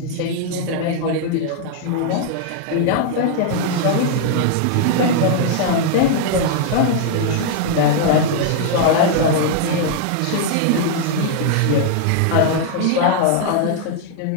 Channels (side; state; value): both; different; correlation 0.00